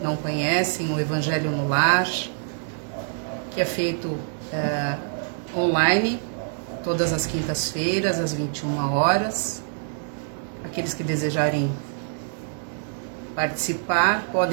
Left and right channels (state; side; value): silent; left; digital silence